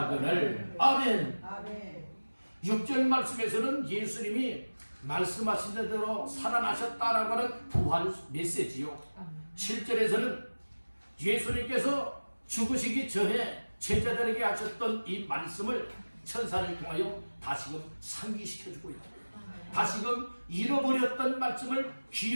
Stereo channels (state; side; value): inverted; both; correlation -1.00